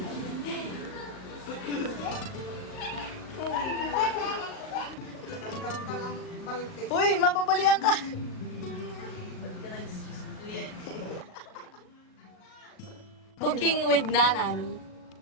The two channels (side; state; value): right; late; 38 ms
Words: Uy, mapapalian ka. Cooking with Nanan.